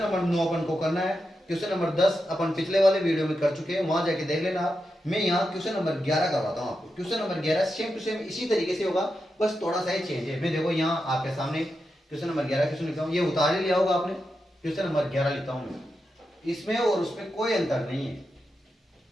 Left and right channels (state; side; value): normal; both; correlation 0.88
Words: 9 अपन को करना है, क्वेश्चन नंबर 10 अपन पिछले वाले वीडियो में कर चुके हैं, वहां जाके देख लेना आप। मैं यहाँ क्वेश्चन नंबर 11 करवाता हूँ आपको। Question number 11 same to same इसी तरीके से होगा, बस थोड़ा सा ही चेंज है। मैं देखो यहाँ आपके सामने क्वेश्चन नंबर 11 क्वेश्चन लिखता हूँ, ये उतार ही लिया होगा आपने, क्वेश्चन नंबर 11 लिखता हूँ मैं, इसमें और उसमें कोई अंतर नहीं है,